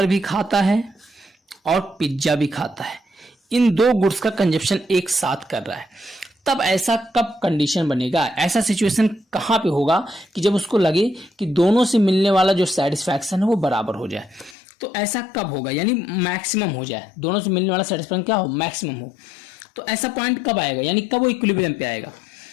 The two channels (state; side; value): drops out; right; at 14.6 s